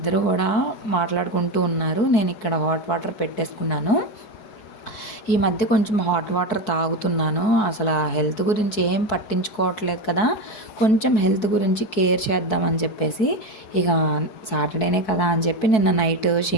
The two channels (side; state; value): right; late; 4.6 ms